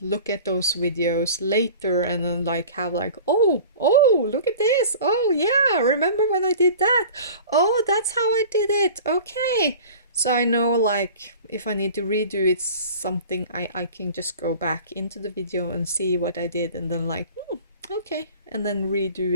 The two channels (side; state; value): both; inverted; correlation -0.41